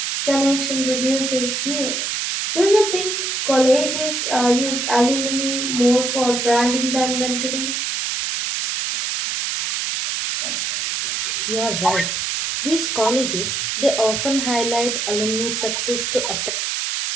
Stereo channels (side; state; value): right; noise; hiss, 1 dB below the sound